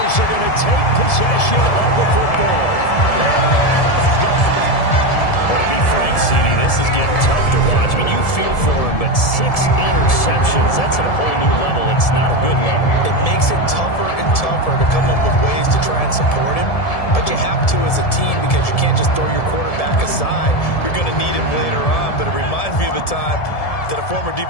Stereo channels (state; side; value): late; right; 1.7 ms